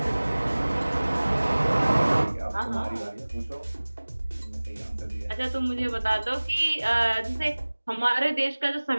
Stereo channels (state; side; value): inverted; both; correlation -1.00